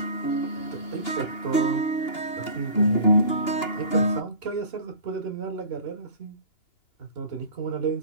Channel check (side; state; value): right; late; 2.9 ms